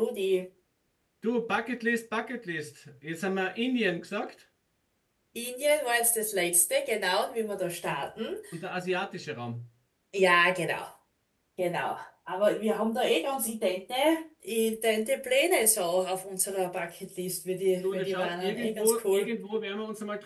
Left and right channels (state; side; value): identical; both; correlation 1.00